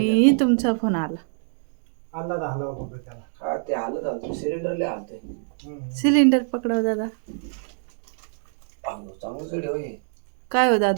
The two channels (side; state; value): left; silent; digital silence